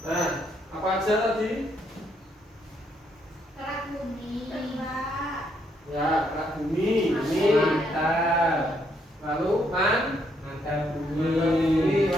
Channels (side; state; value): both; normal; correlation 0.73